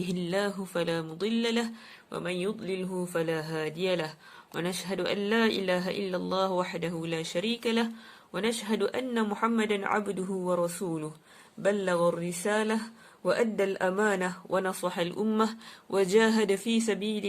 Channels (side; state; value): both; identical; correlation 1.00